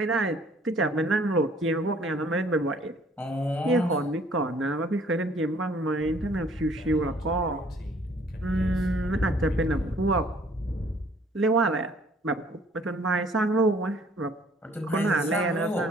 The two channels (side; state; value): both; normal; correlation 0.58